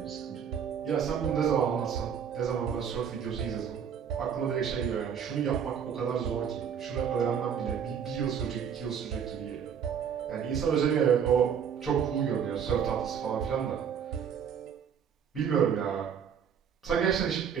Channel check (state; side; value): quieter; left; 7.7 dB